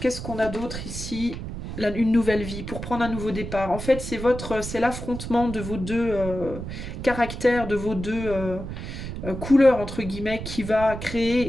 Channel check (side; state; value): right; noise; rumble, 8 dB below the sound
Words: qu'on a d'autre ici? une nouvelle vie, pour prendre un nouveau départ. En fait, c'est l'affrontement de vos deux caractères, de vos deux couleurs, entre guillemets, qui va